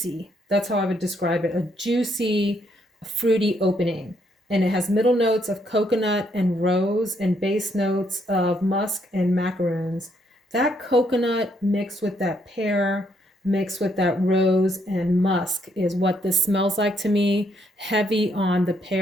That's how I would describe it, a juicy, fruity opening. And it has middle notes of coconut and rose and base notes of musk and macaroons. That coconut mixed with that pear, mixed with that rose and musk is what this smells like to me. Heavy on the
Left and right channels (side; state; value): both; normal; correlation 0.73